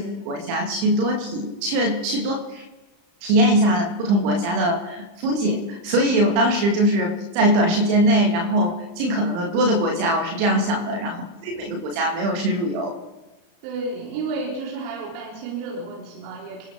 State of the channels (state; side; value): late; left; 35 ms